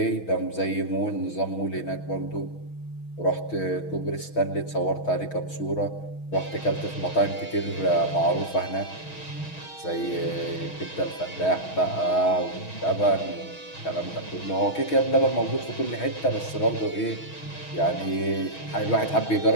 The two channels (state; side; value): late; right; 6.3 ms